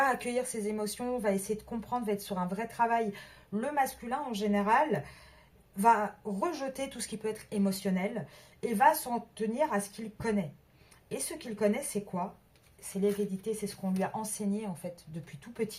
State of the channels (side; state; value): both; identical; correlation 1.00